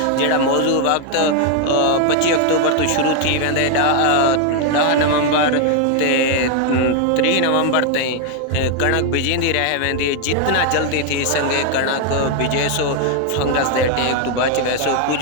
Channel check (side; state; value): both; different; correlation 0.01